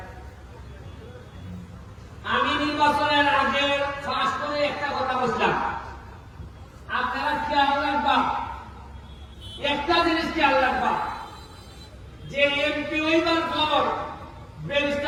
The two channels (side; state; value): both; identical; correlation 1.00